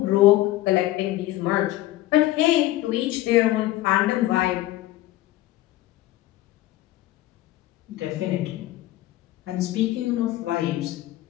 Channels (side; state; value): right; quieter; 15.9 dB